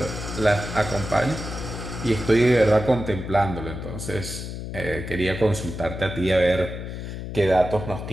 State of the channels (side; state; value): left; noise; hum, 7 dB below the sound